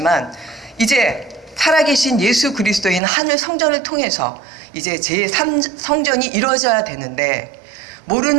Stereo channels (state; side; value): drops out; left; at 3.0 s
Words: 이제 살아계신 예수 그리스도인 하늘 성전을 통해서 이제 제3성전이 이루어져야 되는데